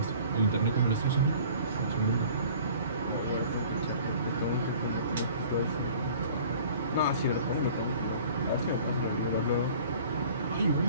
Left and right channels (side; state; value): both; inverted; correlation -0.48